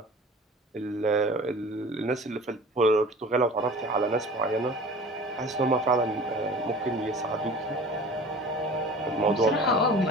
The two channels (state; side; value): normal; both; correlation 0.42